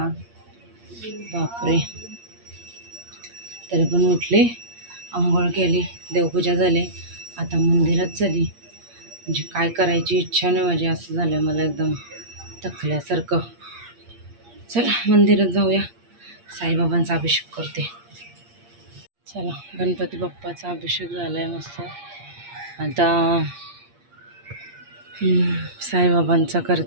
बापरे. तरी पण उठले, आंघोळ केली, देवपूजा झाली, आता मंदिरात चालली. म्हणजे काय करायची इच्छा नाही माझी, असं झालं मला एकदम थकल्यासारखं. चला मंदिरात जाऊया, साईबाबांचा अभिषेक करते. चला, गणपती बाप्पाचा अभिषेक झाला आहे मस्त. आता साईबाबांचा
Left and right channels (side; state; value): left; late; 8.6 ms